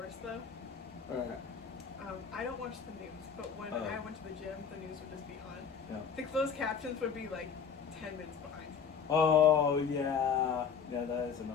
though? Alright. I don't watch the news, but when Oh. I went to the gym, the news would just be on. Yeah. The closed captions would be like 10 minutes behind. Oh, yeah. Yeah, that is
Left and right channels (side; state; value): right; quieter; 6.6 dB